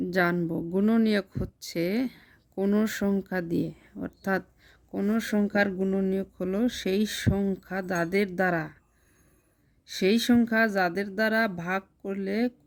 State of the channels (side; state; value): both; identical; correlation 1.00